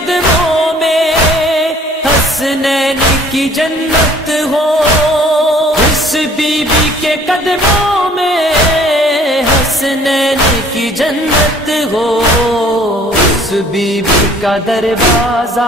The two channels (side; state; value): both; normal; correlation 0.55